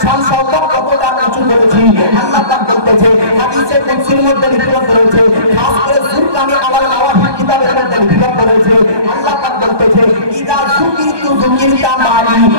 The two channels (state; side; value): late; left; 1.2 ms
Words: শান শওকত কতটা উঁচু করেছি। আল্লাহ পাক বলতেছে হাদিসে কুদসির মধ্যে লিখিত রয়েছে, খাস করে সুরকানি আলাল মাওয়াহিব কিতাবের মধ্যে লিখিত রয়েছে। আল্লাহ পাক বলতেছে ইদা যুকিরতু যুকিরতা মারি,